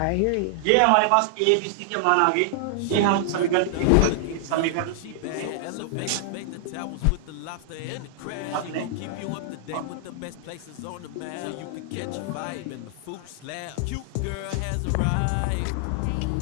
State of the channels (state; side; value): different; both; correlation -0.01